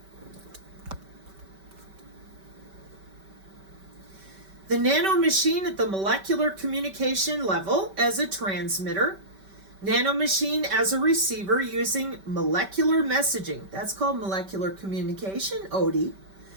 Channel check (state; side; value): late; left; 5.2 ms